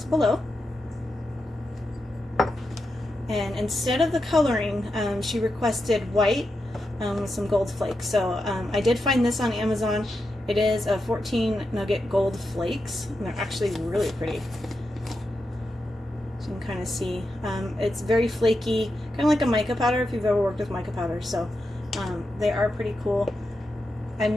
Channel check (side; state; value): both; normal; correlation 0.87